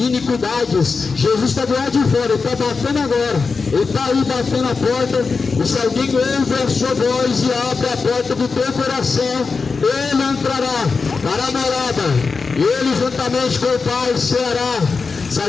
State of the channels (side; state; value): right; quieter; 4.7 dB